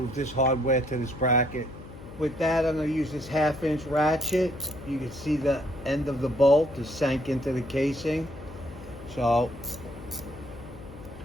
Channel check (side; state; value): left; noise; hum, 16 dB below the sound